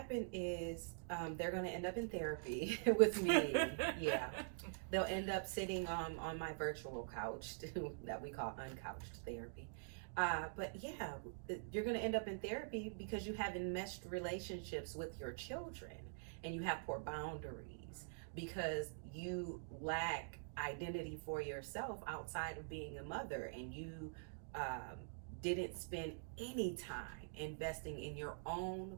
is they're going to end up in therapy with me. Yeah. They'll end up sitting on my virtual couch that we call uncouched therapy. But yeah, you're going to end up in therapy because you have enmeshed relationships with your children, and you have poor boundaries because you lack identity for yourself outside of being a mother, and you didn't spend any time investing in your own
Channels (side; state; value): left; silent; digital silence